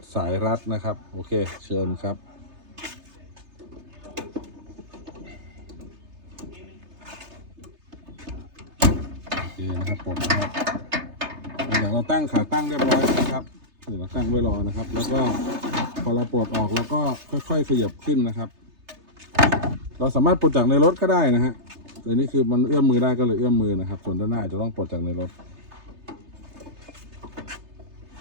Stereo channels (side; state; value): left; late; 3.3 ms